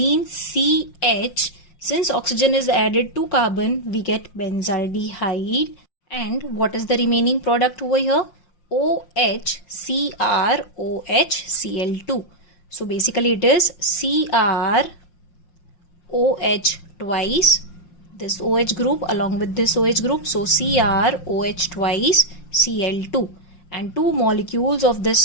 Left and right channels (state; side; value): late; right; 5.6 ms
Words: CH Since oxygen is added to carbon, we get benzaldehyde. And what is the remaining product over here? OH, CrOH, Cl2. So basically it is CrOH twice, this OH group along with this OH group. So CrOH twice, Cl2. And 2 molecules of